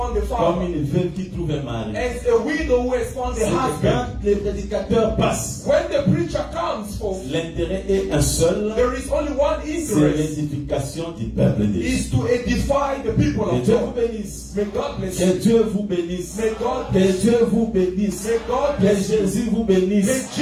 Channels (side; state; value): both; identical; correlation 1.00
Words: a comme father, une veuve qui trouve un mari. as a widow who has found C'est a que husband. quand les prédicateurs passent, When the preacher comes forth, l'intérêt est un seul, there is only one c'est interest, l'édification du peuple de Dieu. is to edify the people Que of Dieu vous God. bénisse. May God bless Que you. Dieu vous bénisse. May God Que bless you. Dieu vous bénisse. May God Que bless you. Jésus vous bénisse.